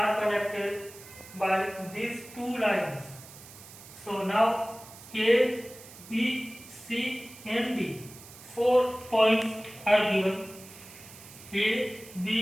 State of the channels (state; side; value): noise; right; hiss, 18 dB below the sound